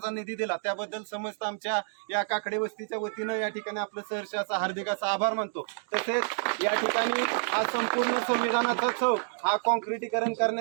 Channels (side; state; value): left; silent; digital silence